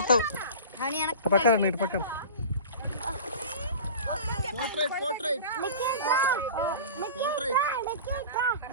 పక్కన ఇటు పక్కన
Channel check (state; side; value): inverted; both; correlation -0.35